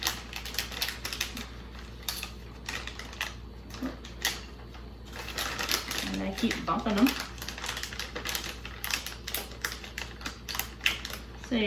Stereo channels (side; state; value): both; identical; correlation 1.00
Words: And I keep bumping them. So